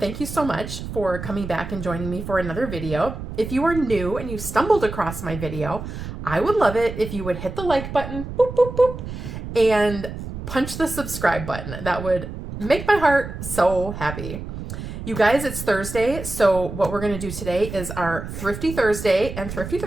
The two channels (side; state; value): right; noise; rumble, 8 dB below the sound